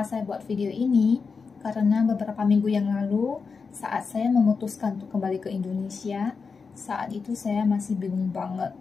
saya buat video ini karena beberapa minggu yang lalu saat saya memutuskan untuk kembali ke Indonesia, saat itu saya masih bingung banget.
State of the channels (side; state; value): right; quieter; 5.1 dB